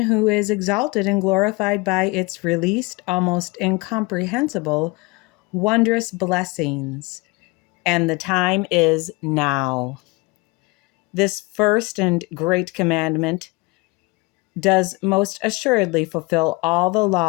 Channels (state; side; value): quieter; right; 25.3 dB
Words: who is exalted and glorified by its released, almost incomprehensible, wondrous blessings. And the time is now. This first and great commandment does most assuredly fulfill all the